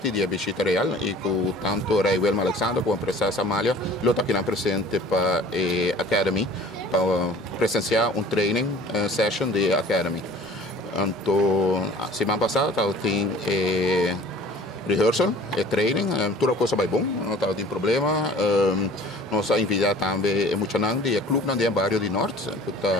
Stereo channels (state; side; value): normal; both; correlation 0.47